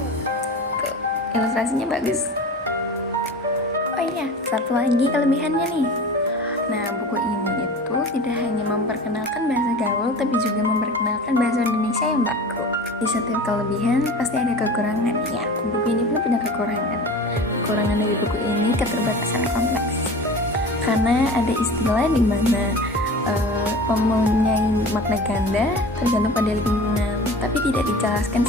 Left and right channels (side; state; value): both; normal; correlation 0.36